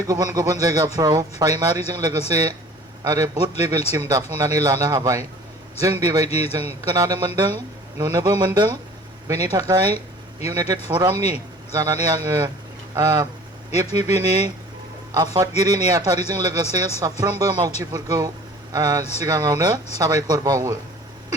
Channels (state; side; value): normal; both; correlation 0.46